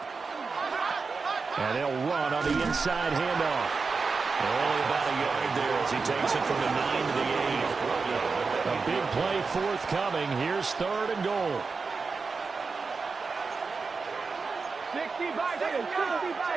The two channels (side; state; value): left; quieter; 4.6 dB